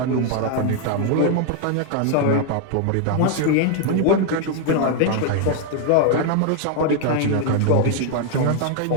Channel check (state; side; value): different; both; correlation 0.00